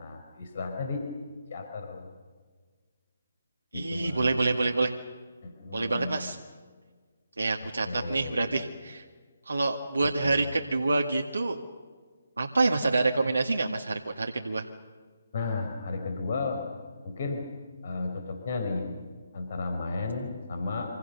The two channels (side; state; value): both; inverted; correlation -0.87